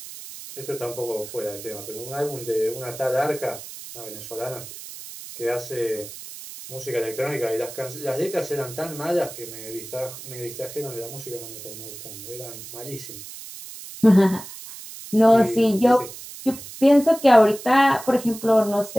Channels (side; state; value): right; noise; hiss, 13 dB below the sound